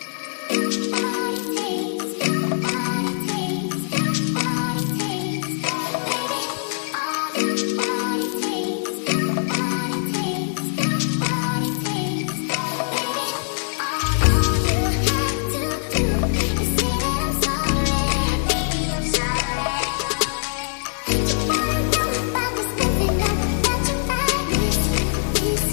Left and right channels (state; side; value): silent; right; 64 dB below the other